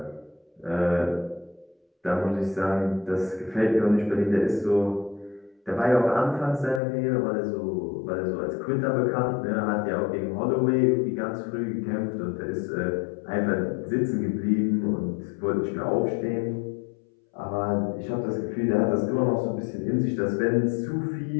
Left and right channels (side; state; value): right; drops out; at 6.8 s